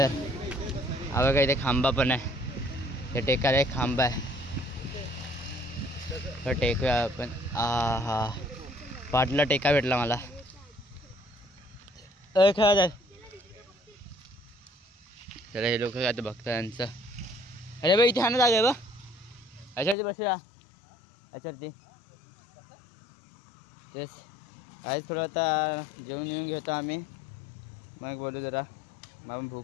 हवं काय इथे खांबा पण आहे ते टेकायला एक खांबा आहे तर टेकूया आपण. हा पाटला टेका भेटला मला खेळा जाय. चला हे लोक काय बघता यांचं. अरे बाई इथे हा ना जागा आहे बा याच्यावरती बसूया याच्यावरती तेच आज थोडं आता जेवण येऊन घेतो आम्ही मग बोलू जरा. मग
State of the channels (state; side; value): drops out; right; at 20.0 s